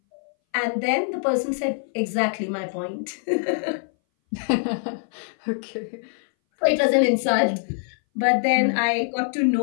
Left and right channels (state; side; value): silent; right; 60 dB below the other